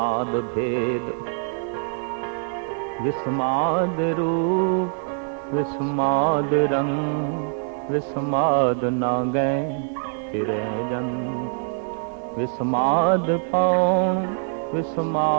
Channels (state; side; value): silent; left; 62 dB below the other